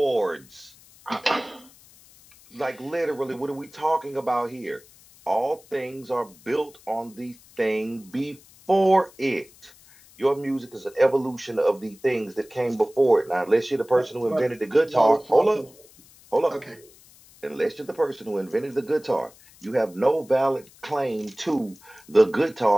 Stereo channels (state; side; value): noise; left; hiss, 25 dB below the sound